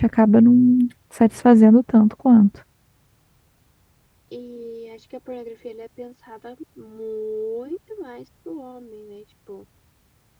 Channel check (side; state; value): both; identical; correlation 1.00